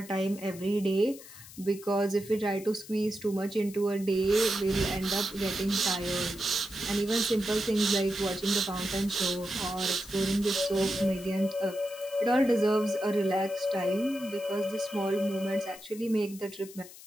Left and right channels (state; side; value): noise; left; hiss, 17 dB below the sound